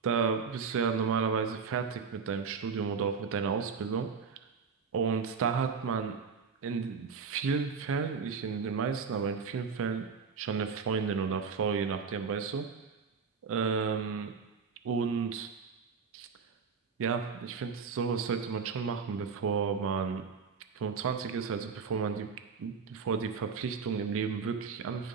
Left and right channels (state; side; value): quieter; left; 5.6 dB